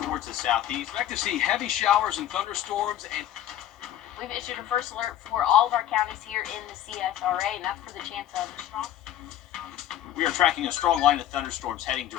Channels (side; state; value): right; quieter; 12.0 dB